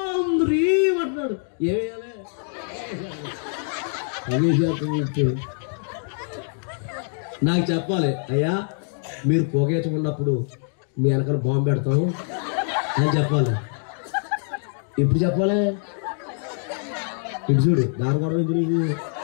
హ్రీం అంటున్నాడు. ఏమేయాలి నాకు చెప్పాలి, అయ్యా మీరు పొగేసుకున్నప్పుడు మీ వెనకాల బాంబు పెడతాము అని చెప్పాలి. ఇప్పుడు చెప్పాలి, ఇటు చూడు దాని కూడా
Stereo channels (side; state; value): right; silent; 60 dB below the other